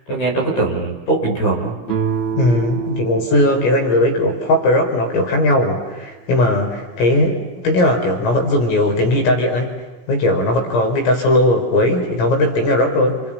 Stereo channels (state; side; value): late; right; 17 ms